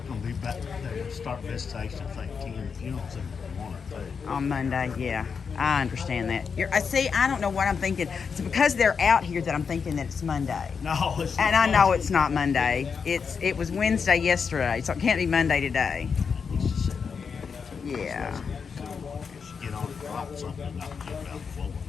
I'm gonna be back. They're gonna start visitation. I think 10 funerals in 1 or 2. On Monday, yeah. I understand that. I see, I don't know what I'm thinking. It's because they're out here that I'm thinking that it's Monday. No, it's And not. I know it's not Monday. It was Wednesday yesterday, so it can't be Monday today. It's just set up. Yeah. Just get on and drop something and knock it out the floor.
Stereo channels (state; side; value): quieter; right; 5.9 dB